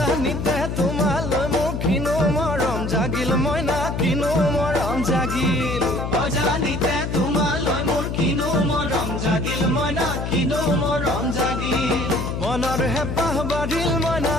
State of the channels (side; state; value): left; noise; hum, 4 dB below the sound